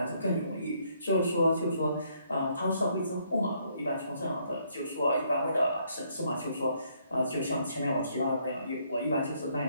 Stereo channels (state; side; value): inverted; both; correlation -0.70